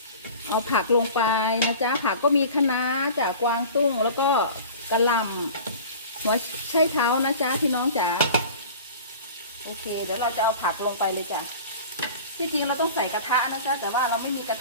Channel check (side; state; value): both; inverted; correlation -0.40